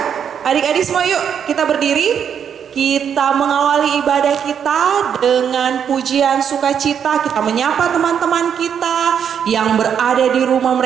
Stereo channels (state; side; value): quieter; left; 8.0 dB